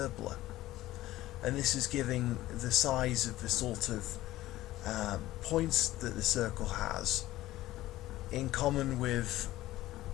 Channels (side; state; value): right; quieter; 15.9 dB